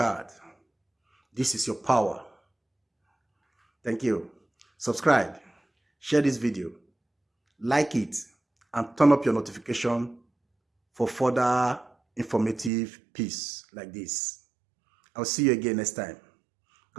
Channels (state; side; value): drops out; left; at 12.7 s